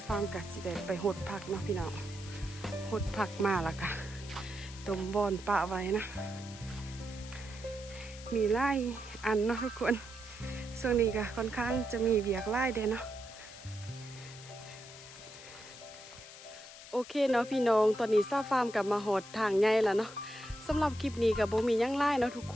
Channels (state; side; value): noise; left; hiss, 16 dB below the sound